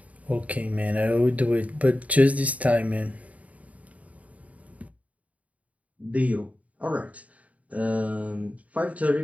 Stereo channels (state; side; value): late; left; 0.069 ms